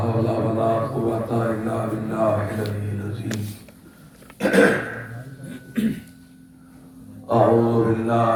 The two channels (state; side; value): identical; both; correlation 1.00